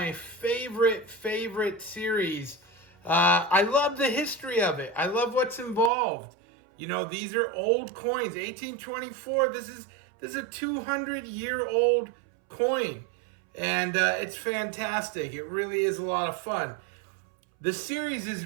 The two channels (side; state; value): left; drops out; at 5.9 s